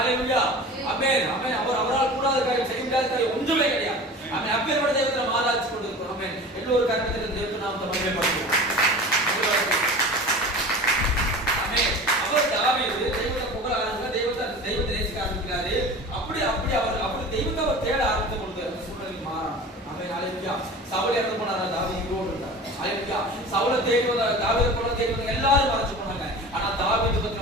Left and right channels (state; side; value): normal; both; correlation 0.36